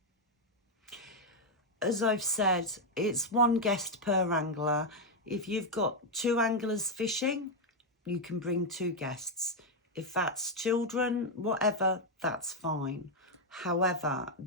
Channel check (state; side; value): normal; both; correlation 0.02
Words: As I've said, it's 1 guest per angler. If you've got 2 anglers fishing, you can bring 2 guests. If that's children, whatever, that's fine. However,